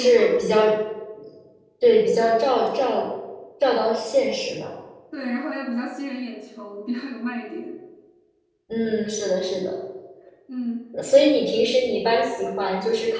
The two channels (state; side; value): identical; both; correlation 1.00